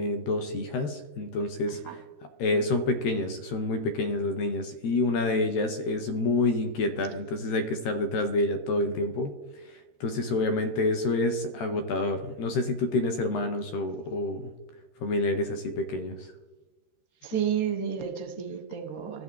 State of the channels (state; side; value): late; right; 13 ms